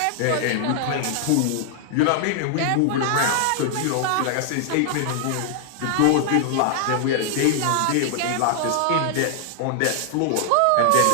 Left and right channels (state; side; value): different; both; correlation 0.00